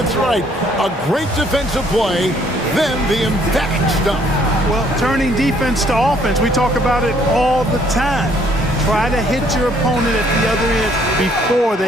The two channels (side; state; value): both; normal; correlation 0.64